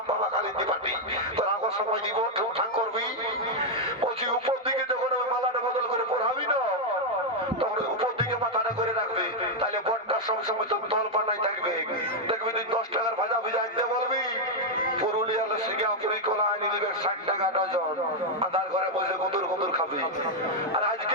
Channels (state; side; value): normal; both; correlation 0.00